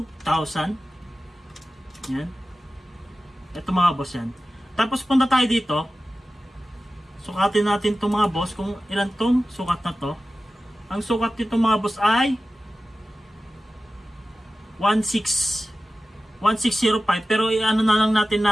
Yan. Ito mga boss yan. Tapos punta tayo dito. Sukatin natin itong mga boss kung ilan tong sukat na to. Ang sukat nito mga boss ay 1605. Pero i-ano na lang natin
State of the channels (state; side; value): normal; both; correlation 0.95